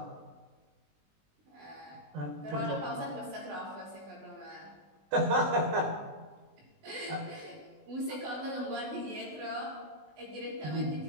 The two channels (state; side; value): late; left; 20 ms